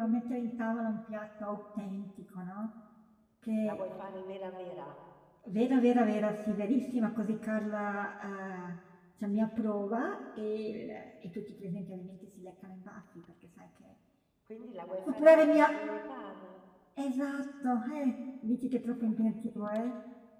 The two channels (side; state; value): both; identical; correlation 1.00